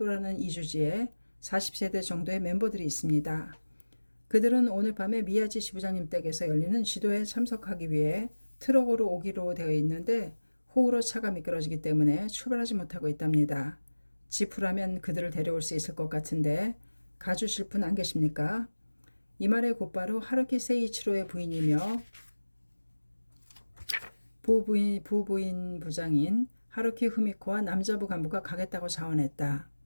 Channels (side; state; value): both; inverted; correlation -1.00